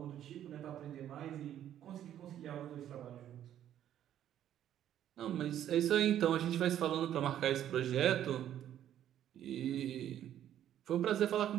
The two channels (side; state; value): left; quieter; 11.1 dB